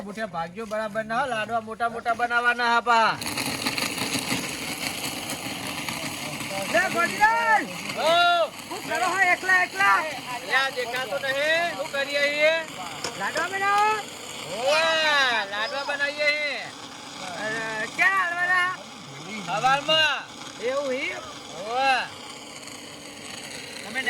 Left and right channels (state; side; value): identical; both; correlation 1.00